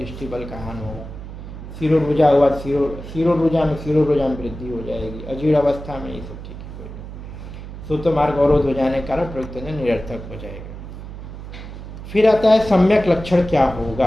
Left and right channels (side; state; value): right; noise; hum, 11 dB below the sound